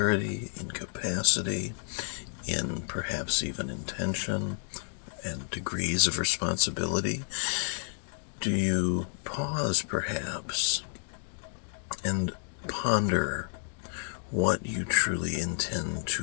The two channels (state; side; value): silent; right; 57 dB below the other